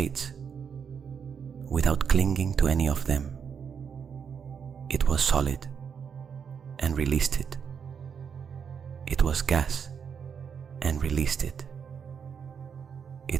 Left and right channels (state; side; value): quieter; left; 6.9 dB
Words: without clinging to any of them. It was solid and released it. It was gas and released it.